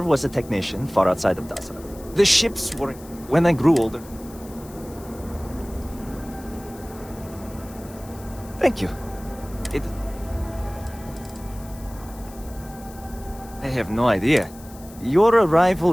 was a technician far outside of Dasra. The ships were... when I grew older. Thank you. I have no idea. Your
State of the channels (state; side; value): noise; left; hiss, 21 dB below the sound